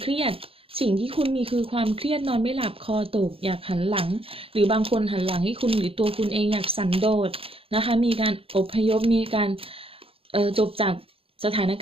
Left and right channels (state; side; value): late; left; 0.27 ms